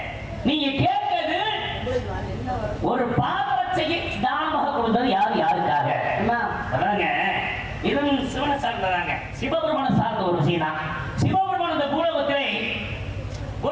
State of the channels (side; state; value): both; identical; correlation 1.00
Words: நீங்க கேட்கிறது ஒரு பாதரட்சையை தானமாக கொடுத்தது யாருக்காக? அதாங்க இதுவும் சிவனை சார்ந்ததாங்க, சிவபெருமான சார்ந்த ஒரு விஷயம் தான். சிவபெருமான இந்த பூலோகத்திலே